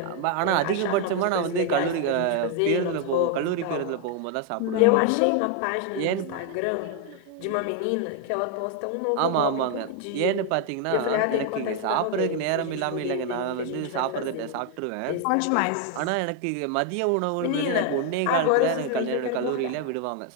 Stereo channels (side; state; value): both; different; correlation 0.01